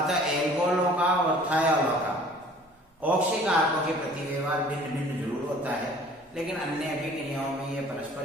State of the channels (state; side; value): normal; both; correlation 0.51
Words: एल्कोहलों का और थायोलों का ऑक्सीकारकों के प्रति व्यवहार भिन्न भिन्न जरूर होता है, लेकिन अन्य अभिक्रियाओं में ये परस्पर